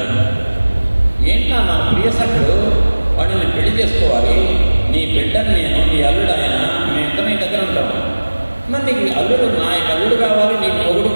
ఏంటా నా ప్రియ సఖుడు, వాడిని నేను పెళ్లి చేసుకోవాలి, నీ బిడ్డని నేను, నీ అల్లుడు ఆయన, మేము ఇద్దరు నీ దగ్గర ఉంటాము. మరి నీకు అల్లుడు, నా అల్లుడు కావాలి, నీకు మొగుడు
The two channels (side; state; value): both; inverted; correlation -1.00